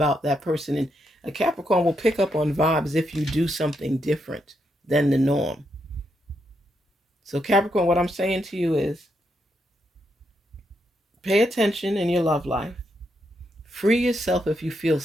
that person. And a Capricorn will pick up on vibes if you do something different than the norm. So Capricorn, what I'm saying to you is pay attention in your love life. Free yourself if you feel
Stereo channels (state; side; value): normal; both; correlation 0.80